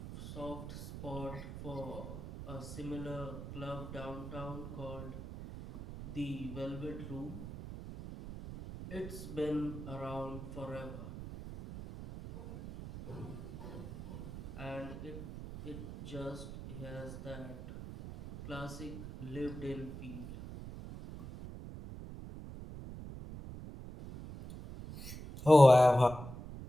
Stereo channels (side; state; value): right; noise; rumble, 10 dB below the sound